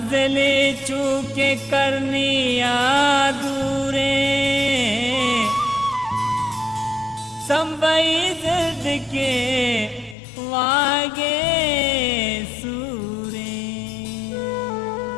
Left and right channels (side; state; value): right; drops out; at 10.2 s